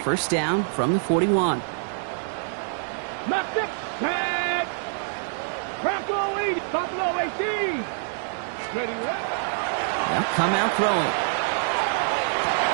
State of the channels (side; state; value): left; silent; digital silence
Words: down from the 41. Left it, set. Buffalo 80, Buffalo 18. Ready, They'll come out throwing.